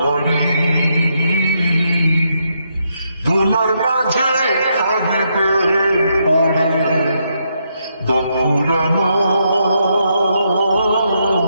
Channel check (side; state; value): both; inverted; correlation -0.78